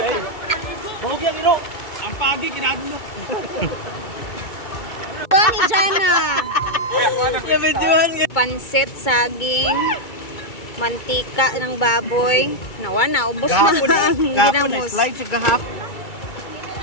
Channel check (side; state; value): right; late; 2.3 ms